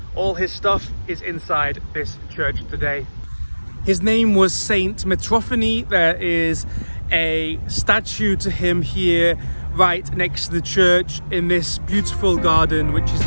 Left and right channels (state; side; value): inverted; both; correlation -1.00